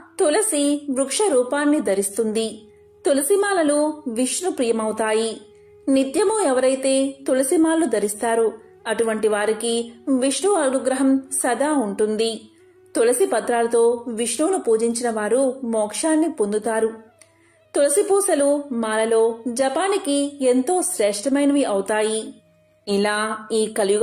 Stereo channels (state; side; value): identical; both; correlation 1.00